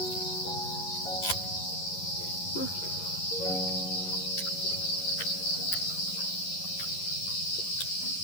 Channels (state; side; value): late; right; 11 ms